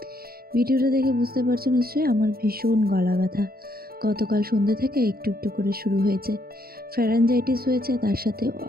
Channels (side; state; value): left; late; 0.44 ms